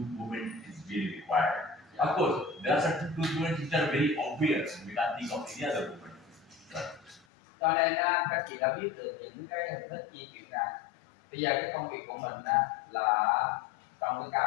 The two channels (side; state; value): right; drops out; at 7.2 s